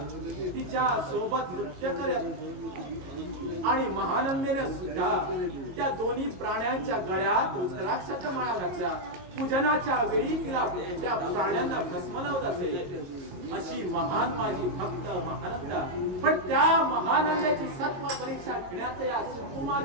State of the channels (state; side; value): late; left; 22 ms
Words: तिच्या सोबत नृत्य करत आणि महानंदेने सुद्धा त्या दोन्ही प्राण्यांच्या गळ्यात रुद्राक्षाच्या माळा घातल्या. पूजनाच्या वेळी तिला त्या प्राण्यांना भस्म लावत असे. अशी महान माझी भक्त महानंदा. पण त्या महानंदाची सत्व परीक्षा घेण्याचं या